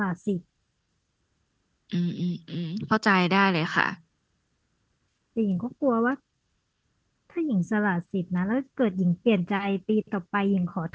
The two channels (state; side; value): identical; both; correlation 1.00